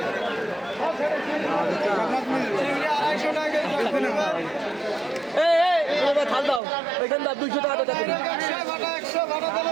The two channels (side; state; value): left; drops out; at 6.6 s